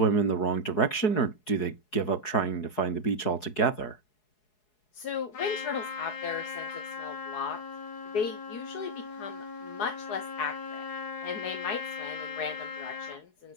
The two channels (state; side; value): late; right; 4.7 ms